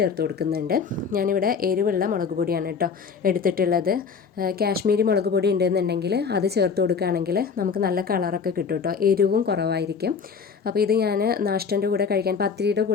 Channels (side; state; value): right; quieter; 5.9 dB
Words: കൊടുക്കുന്നുണ്ട്. ഞാനിവിടെ എരിവുള്ള മുളക് പൊടിയാണ് കേട്ടോ എടുത്തിട്ടുള്ളത്. കാശ്മീരി മുളക് പൊടി ഉണ്ടെന്നുണ്ടെങ്കിൽ അത് ചേർത്ത് കൊടുക്കുകയാണെങ്കിൽ നമുക്ക് നല്ല കളറൊക്കെ കിട്ടും കേട്ടോ. എരിവും കുറവായിരിക്കും. അപ്പോൾ ഇത് ഞാൻ നാഷ്ടൻ്റെ കൂടെ കഴിക്കാൻ, പത്തിരിയുടെ